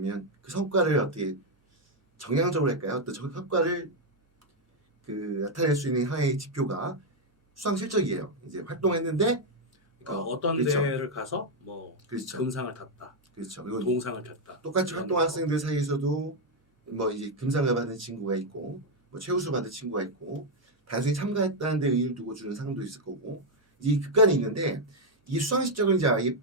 그 성과를 어떻게 정량적으로 할까요? 어떤 성과를 그 나타낼 수 있는 하나의 지표가 수상 실적이에요. 이제 활동했는데 그러니까 어떤 그렇죠. 대회를 가서 뭐 그렇죠. 금상을 탔다, 그렇죠. 그리고 동상을 탔다. 똑같이 이런 활동한 거. 학생들 사이에서도 뭐 이제 금상을 받은 친구가 있고 뭐 최우수 받은 친구가 있고 단순히 참가했다는 데 의의를 두고 주는 상도 있을 거고 이 극간이 있는데 이 수상 실적을 이제 아예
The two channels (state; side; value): normal; both; correlation 0.01